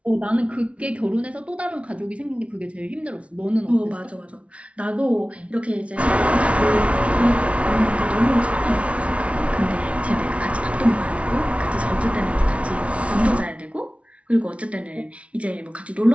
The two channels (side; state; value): left; late; 0.063 ms